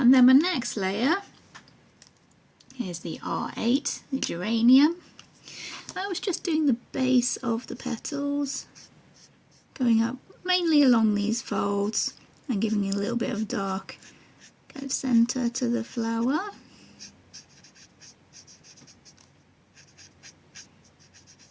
then my next layer is the R8, the Geranium. I was just doing the base of the petals, going up mainly along these folds and giving it a little bit of dark kind of centre to the flower.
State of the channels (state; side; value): identical; both; correlation 1.00